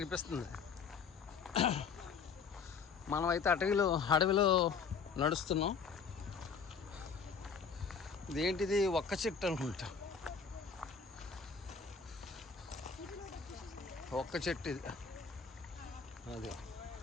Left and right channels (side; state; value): right; quieter; 5.7 dB